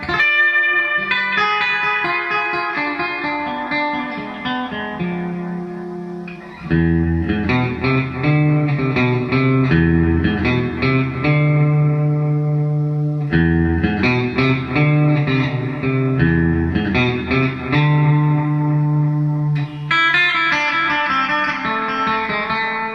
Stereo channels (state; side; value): identical; both; correlation 1.00